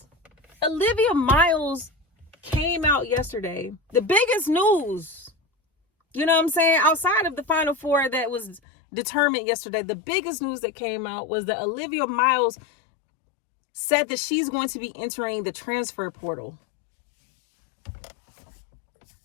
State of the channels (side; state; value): right; drops out; at 8.6 s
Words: Olivia Miles came out yesterday. The biggest news, you know what I'm saying? Outside of the Final Four that was determined yesterday, the biggest news that came out was that Olivia Miles said that she's going to be entering the transfer portal.